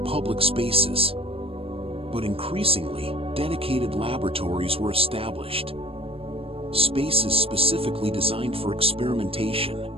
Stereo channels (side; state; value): left; late; 0.28 ms